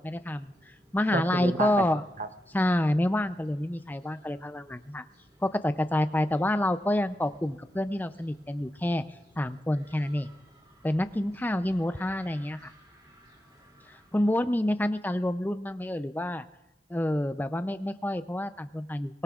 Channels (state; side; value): normal; both; correlation 0.88